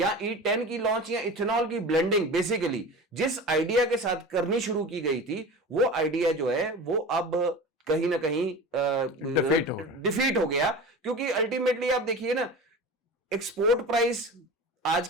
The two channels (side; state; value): both; normal; correlation 0.33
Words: E10 की लॉन्च या इथेनॉल की ब्लेंडिंग बेसिकली जिस आइडिया के साथ करनी शुरू की गई थी, वो आइडिया जो है वो अब कहीं ना कहीं डिफीट हो गया। क्योंकि अल्टीमेटली आप देखिए ना, एक्सपोर्ट प्राइस आज